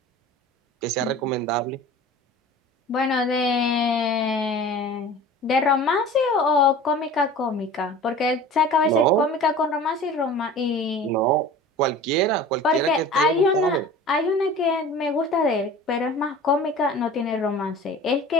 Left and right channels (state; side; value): normal; both; correlation 0.40